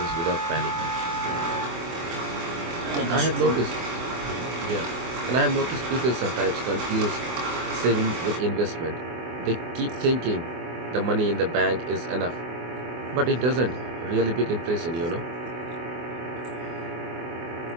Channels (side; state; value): left; late; 24 ms